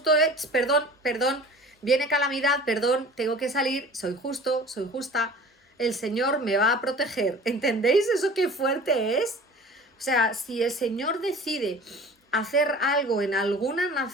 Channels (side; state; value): both; normal; correlation 0.42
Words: perdón, viene calamidad, perdón, tengo que salir, soy justo, soy justa, el Señor me va a proteger. ¿Entendéis eso qué fuerte es? O sea, si el Señor decide hacer algo en alguna